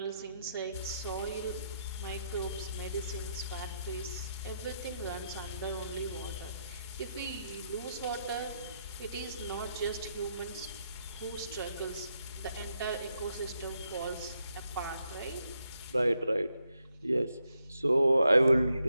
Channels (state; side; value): inverted; both; correlation -0.79